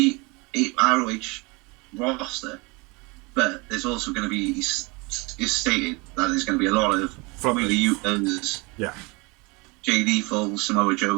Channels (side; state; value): left; quieter; 27.2 dB